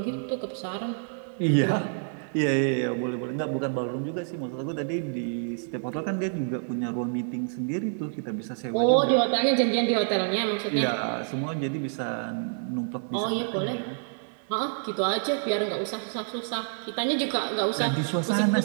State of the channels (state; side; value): silent; left; 60 dB below the other